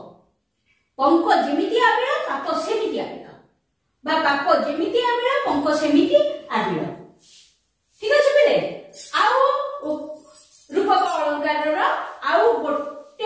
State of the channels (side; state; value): both; identical; correlation 1.00